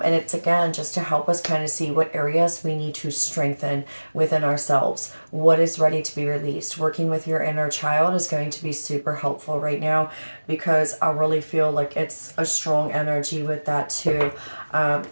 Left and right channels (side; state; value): both; inverted; correlation -1.00